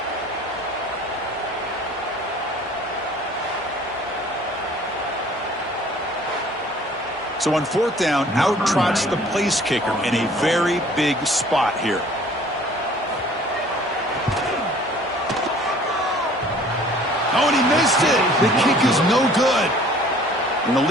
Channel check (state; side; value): normal; both; correlation 0.52